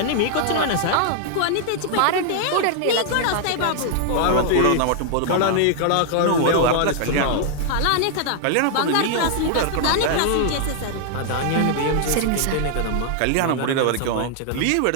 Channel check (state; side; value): different; both; correlation -0.01